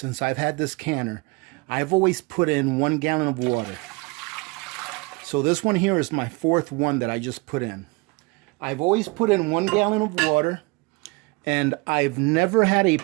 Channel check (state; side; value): quieter; left; 26.7 dB